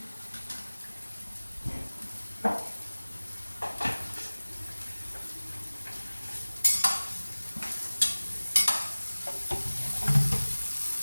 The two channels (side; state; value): both; inverted; correlation -1.00